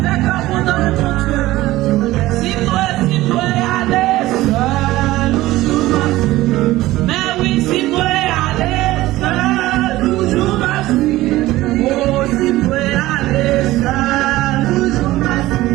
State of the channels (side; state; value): left; quieter; 17.1 dB